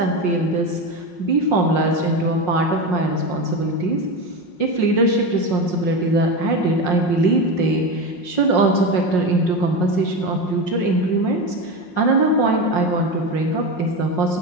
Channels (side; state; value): right; late; 5.6 ms